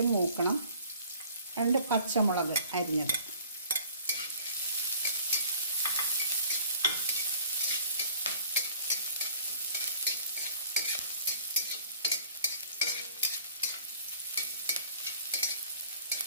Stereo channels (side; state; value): both; inverted; correlation -0.52